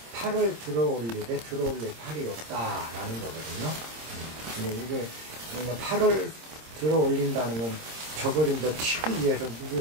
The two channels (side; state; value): left; late; 26 ms